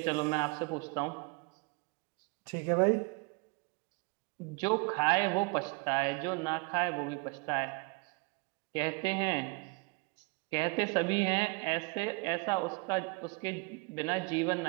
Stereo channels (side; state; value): left; quieter; 29.9 dB